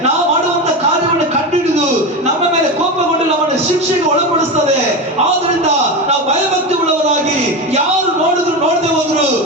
ನಾವು ಮಾಡುವಂತ ಕಾರ್ಯವನ್ನು ಕಂಡುಹಿಡಿದು ನಮ್ಮ ಮೇಲೆ ಕೋಪಗೊಂಡು ನಮ್ಮನ್ನು ಶಿಕ್ಷೆಗೆ ಒಳಪಡಿಸ್ತದೆ. ಆದ್ರಿಂದ ನಾವು ಭಯಭಕ್ತಿ ಉಳ್ಳವರಾಗಿ ಯಾರು ನೋಡಿದ್ರು ನೋಡದೆ ಹೋದ್ರು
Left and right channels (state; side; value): normal; both; correlation 0.19